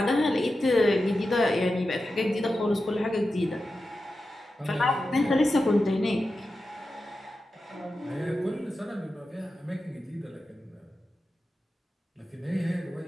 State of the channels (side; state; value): both; normal; correlation 0.91